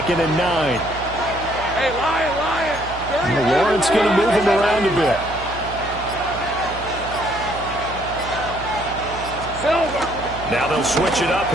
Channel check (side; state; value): right; noise; hum, 12 dB below the sound